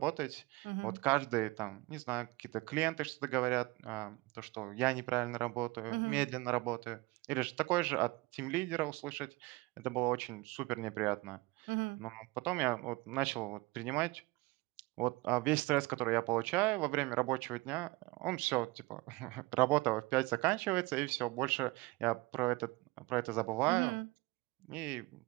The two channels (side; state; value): left; quieter; 23.2 dB